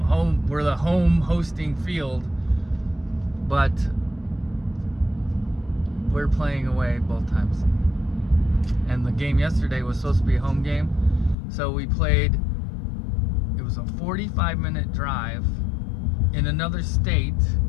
the home hosting field. But we're playing away both times. And the game yesterday was supposed to be a home game. So we played, it was a 45-minute drive in another state.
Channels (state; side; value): drops out; right; at 11.4 s